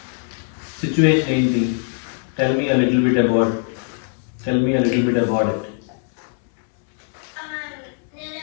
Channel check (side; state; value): right; silent; 60 dB below the other